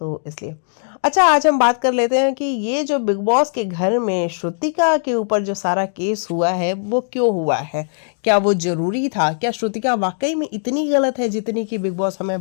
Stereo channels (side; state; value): right; silent; digital silence